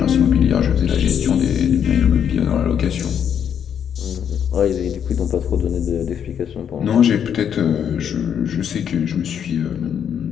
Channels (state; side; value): quieter; right; 8.4 dB